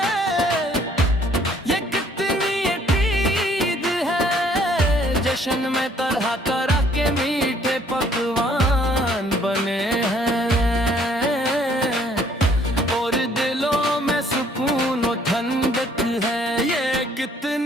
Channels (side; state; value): both; normal; correlation 0.61